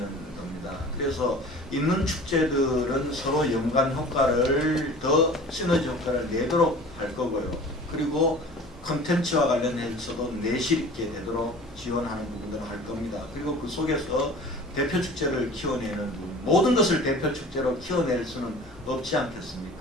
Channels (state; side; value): normal; both; correlation 0.42